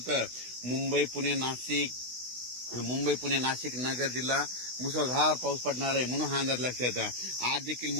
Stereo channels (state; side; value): late; left; 16 ms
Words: तर मुंबई पुणे नाशिक नगर जिल्हा मुसळधार पाऊस पडणार आहे. म्हणून हा अंदाज लक्षात आहे. आज देखील